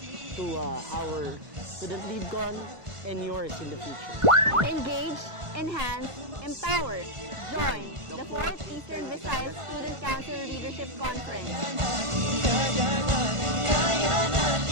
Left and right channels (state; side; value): late; left; 1.5 ms